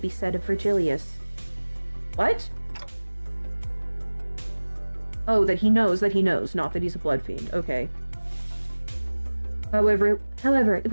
be said of Virgilius. What? Oh, that he knows, not that he's a bloodfiend. Okay. However, it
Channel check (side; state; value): both; inverted; correlation -1.00